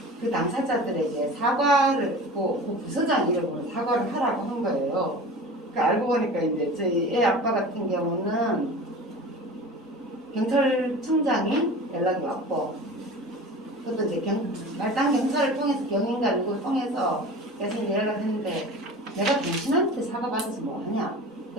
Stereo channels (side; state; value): both; normal; correlation 0.36